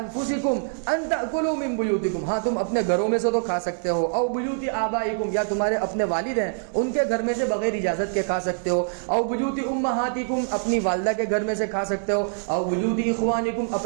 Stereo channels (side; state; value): left; silent; digital silence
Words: ان تاکلوا من بیوتکم. ہاں تم اپنے گھروں میں سے تو کھا سکتے ہو, او بیوت آبائکم یا تمہارے اپنے والد ہیں ان کے گھر میں سے بغیر اجازت کے کھا سکتے ہو, او بیوت امہاتکم اپنی والدہ کے گھر میں سے کھا سکتے ہو, او بیوت اخوانکم